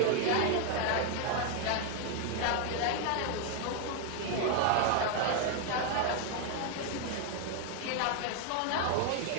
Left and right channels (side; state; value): both; different; correlation 0.01